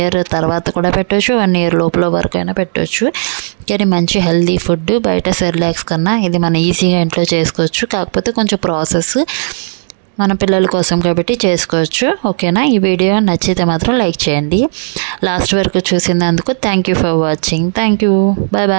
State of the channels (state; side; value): silent; left; 67 dB below the other